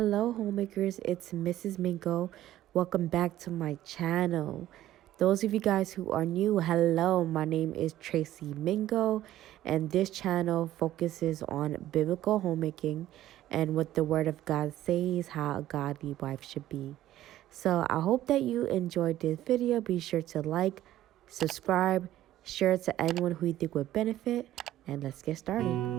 homemakers. It's Mrs. Mingo. Welcome back to my channel. Those of you guys who are new, hello. My name is Tracy Mingo, and this channel focuses on biblical homemaking and what the Word of God says how a godly wife should be. So I hope that you enjoyed this video. Be sure to like, subscribe, share it to anyone who you think would benefit, and let's get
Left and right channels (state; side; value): quieter; left; 13.7 dB